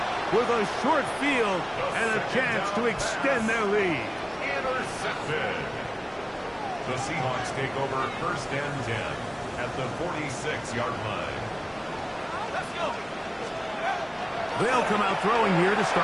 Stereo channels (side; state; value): both; identical; correlation 1.00